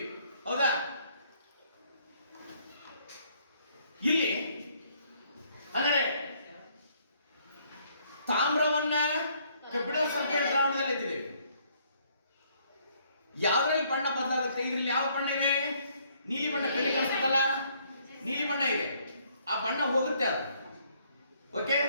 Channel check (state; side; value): inverted; both; correlation -0.66